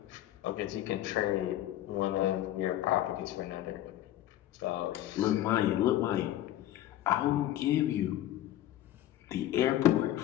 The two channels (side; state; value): right; quieter; 13.4 dB